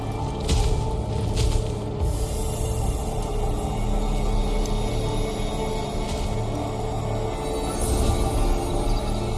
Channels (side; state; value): both; identical; correlation 1.00